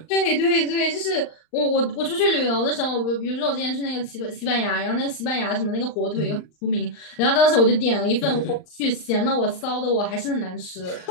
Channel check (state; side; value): late; right; 39 ms